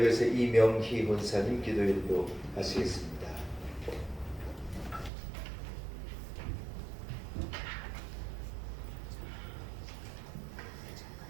위해서 이명희 권사님 기도인도 하시겠습니다.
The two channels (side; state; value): left; drops out; at 5.1 s